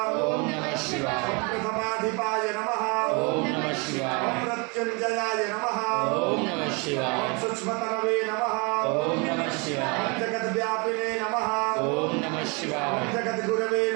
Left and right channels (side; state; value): left; quieter; 31.0 dB